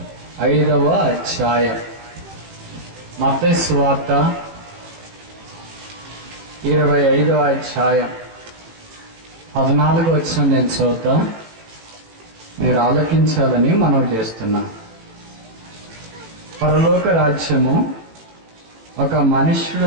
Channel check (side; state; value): left; late; 18 ms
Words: అధ్యాయం. మత్తయి సువార్త 25వ అధ్యాయం 14వ వచనం నేను చదువుతా, మీరు ఆలకించాలని మనం చేస్తున్నాం. పరలోక రాజ్యము ఒక మనుష్యుడు